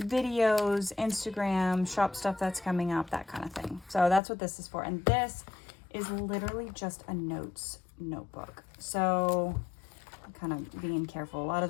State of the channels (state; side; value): drops out; right; at 4.2 s